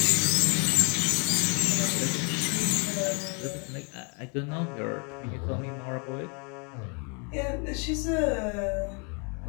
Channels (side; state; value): right; quieter; 35.1 dB